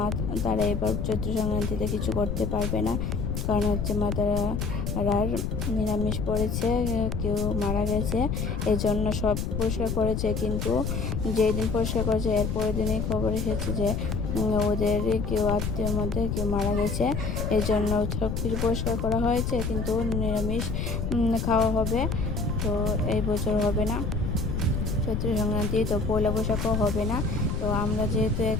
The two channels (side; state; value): left; noise; rumble, 1 dB below the sound